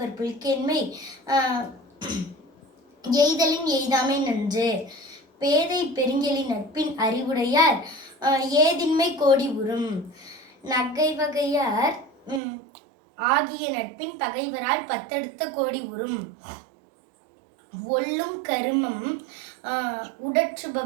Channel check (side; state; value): left; drops out; at 12.4 s